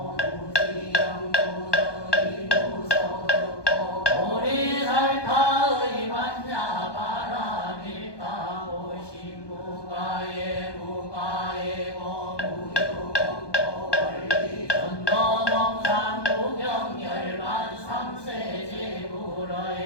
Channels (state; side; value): late; right; 1.2 ms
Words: 무지영무덕이 무소득고 보리살타의 만야 바라밀다고 신무가에 무가에고 무유공고 원리 전도몽산 무경열만